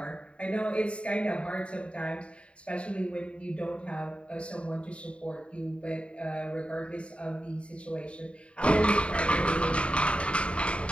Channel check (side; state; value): right; late; 0.060 ms